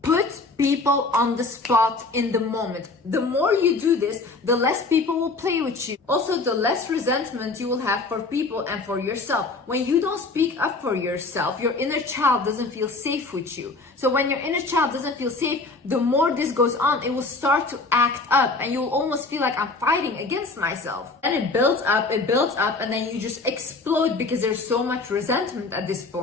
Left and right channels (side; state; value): right; quieter; 3.6 dB